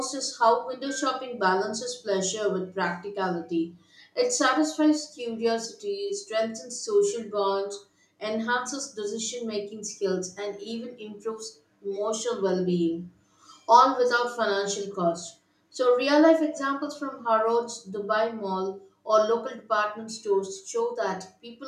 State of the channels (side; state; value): both; identical; correlation 1.00